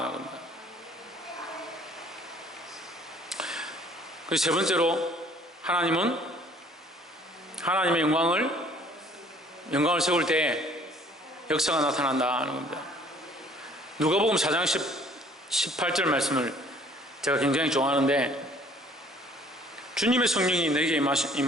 겁니다. 그래서 세 번째로, 하나님은 하나님의 영광을 세울 때 역사가 나타난다는 겁니다. 누가복음 4장 18절 말씀을 제가 굉장히 좋아하는데, 주님의 성령이 내게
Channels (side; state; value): both; normal; correlation 0.56